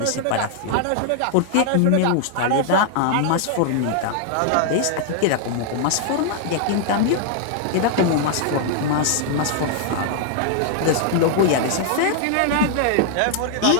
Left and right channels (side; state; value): both; different; correlation -0.01